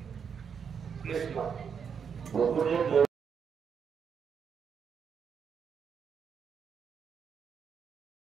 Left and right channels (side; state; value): left; quieter; 6.9 dB